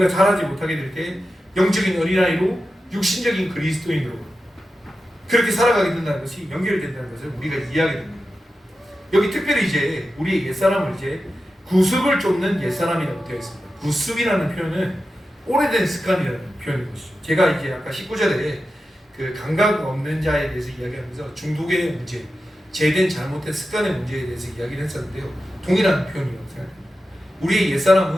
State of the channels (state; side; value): normal; both; correlation 0.92